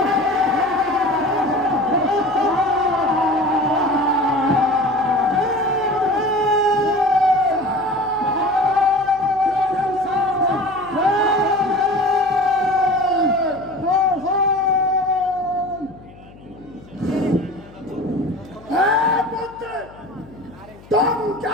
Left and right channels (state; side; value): noise; left; hum, 22 dB below the sound